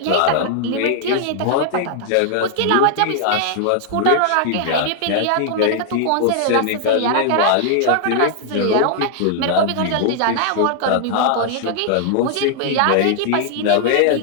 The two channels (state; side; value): different; both; correlation 0.00